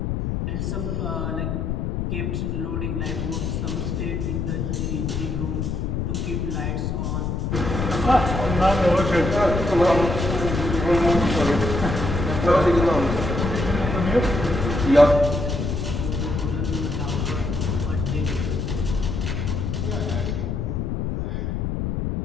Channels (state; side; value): noise; left; rumble, 1 dB below the sound